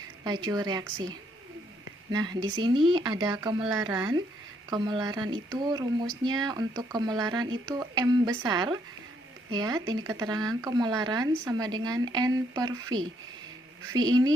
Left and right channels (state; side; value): normal; both; correlation 0.72